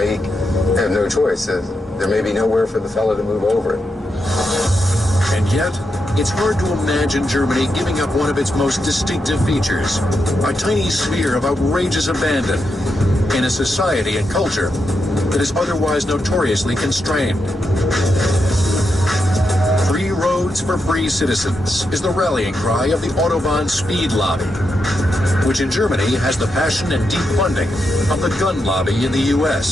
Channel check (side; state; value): both; normal; correlation 0.85